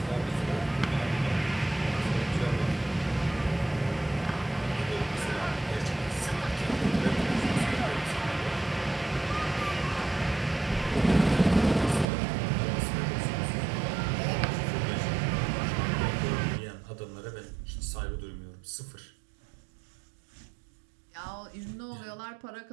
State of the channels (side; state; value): left; drops out; at 12.1 s